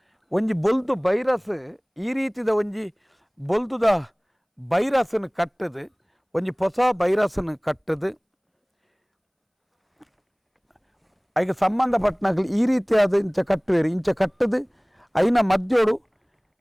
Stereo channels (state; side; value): identical; both; correlation 1.00